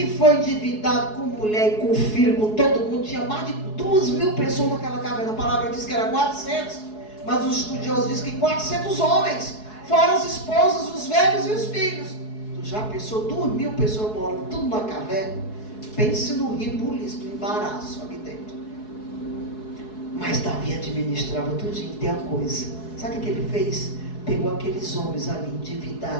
foi endividado com mulher e com filho, com todo mundo. Tinha mais de 2.000 pessoas naquela caverna. A palavra diz que era 400, mas os estudiosos dizem que 400 homens, fora as esposas, os velhos e os filhos. Tu já pensou 2.000 pessoas morando tudo na caverna? Pense no ribuliço, no embaraço ali dentro. Mas Davi administrava tudinho. Tem uma coisa, sabe o que ele fez? Pegou aqueles homens ali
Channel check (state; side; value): late; right; 4.7 ms